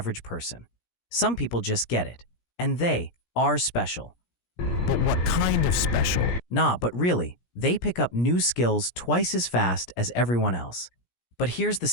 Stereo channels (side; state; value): right; late; 17 ms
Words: person. Some people just get it, and they are special. But what kind of special? Nah, but really, they pick up new skills twice as fast as everyone else. But here's the